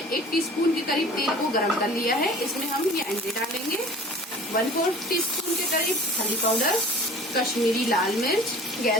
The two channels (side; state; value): both; normal; correlation 0.45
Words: 1 टीस्पून के करीब तेल को गरम कर लिया है। इसमें हम ये अंडे डालेंगे। 1/4 टीस्पून के करीब हल्दी पाउडर, कश्मीरी लाल मिर्च।